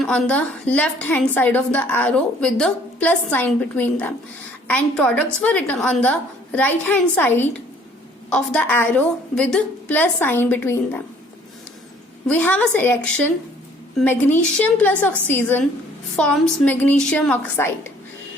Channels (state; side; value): normal; both; correlation 0.58